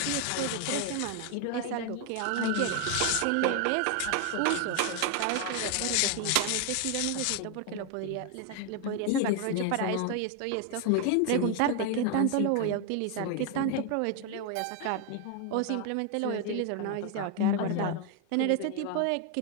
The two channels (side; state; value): both; different; correlation 0.01